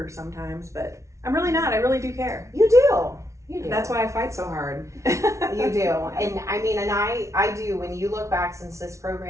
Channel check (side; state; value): left; late; 0.14 ms